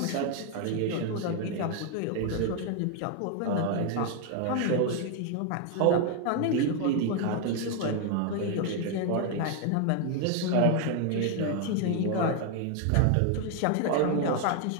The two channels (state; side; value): different; both; correlation 0.01